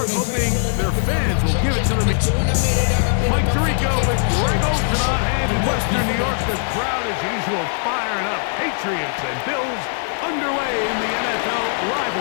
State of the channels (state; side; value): silent; right; 66 dB below the other